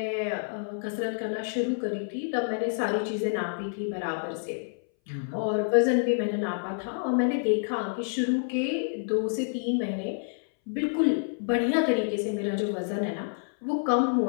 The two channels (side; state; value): right; silent; 59 dB below the other